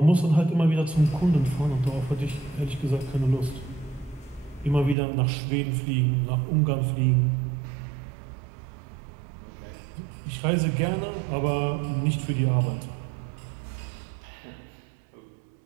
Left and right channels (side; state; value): left; drops out; at 5.0 s